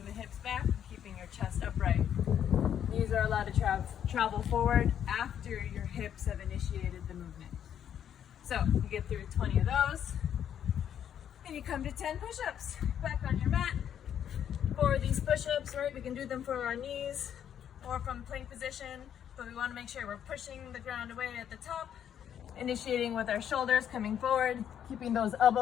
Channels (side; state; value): right; quieter; 9.4 dB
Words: the hips back, keeping your chest upright. Knees are allowed to travel forward after your hips have initiated the movement. So you get through 20 of those, and you come to 10 push-ups. Back on your mat. For these push-ups, right, we can do them for our knees or from plank position, but we want to make sure we're pushing the ground away at the top, initiating with our shoulders coming forward, keeping those